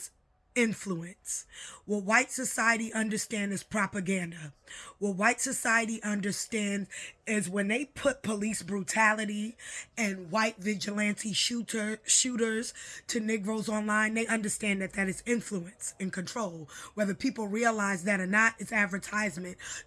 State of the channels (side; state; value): both; identical; correlation 1.00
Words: influence. What white society understands is propaganda. What white society understands is when they put police brutality and white vigilante shooters to Negroes online, they understand that that is influence and control. Whether people realize that or not, it's advertisement